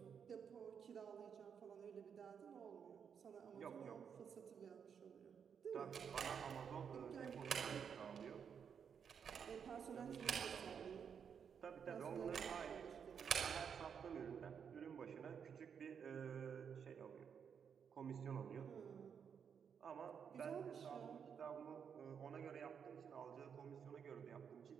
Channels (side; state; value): left; quieter; 7.2 dB